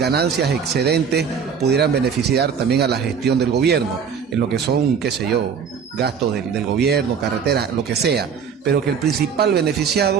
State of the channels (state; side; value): quieter; left; 6.7 dB